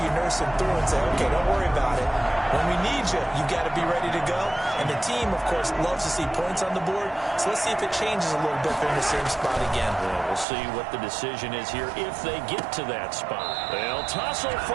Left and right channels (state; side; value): drops out; left; at 10.5 s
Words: you nurse him through and say, okay, don't worry about it. When we need you, you got to be ready to go. And the team, of course, loves to see points on the board. So let's see if it changes a little bit if they're in the same spot again. Yeah, we'll see what the decision is here if they get to that spot. They'll tussle